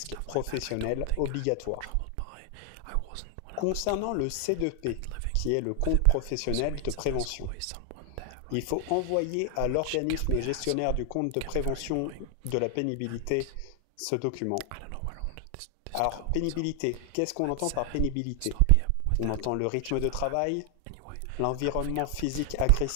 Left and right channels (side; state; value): both; different; correlation 0.00